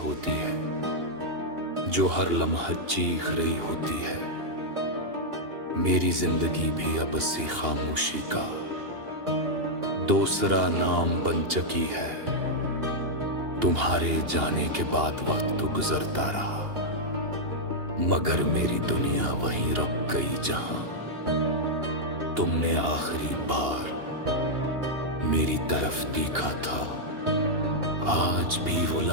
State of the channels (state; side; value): late; left; 2.8 ms